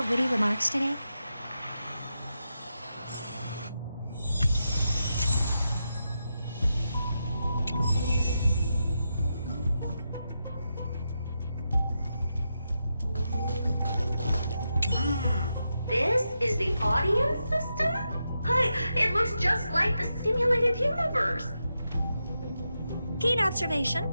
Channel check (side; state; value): both; inverted; correlation -0.86